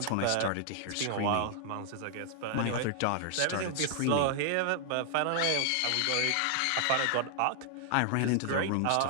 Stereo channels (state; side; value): different; both; correlation 0.00